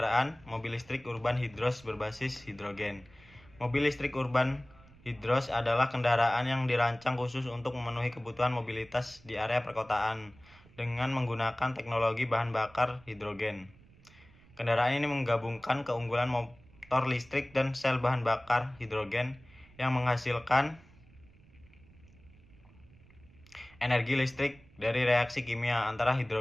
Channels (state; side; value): noise; right; rumble, 25 dB below the sound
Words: mobil listrik urban hidros berbasis hidrogen. Mobil listrik urban hidros adalah kendaraan yang dirancang khusus untuk memenuhi kebutuhan mobilitas di area perkotaan dengan menggunakan teknologi bahan bakar hidrogen. Kendaraan ini menggabungkan keunggulan motor listrik dan sel bahan bakar hidrogen yang menghasilkan energi listrik dari reaksi kimia antara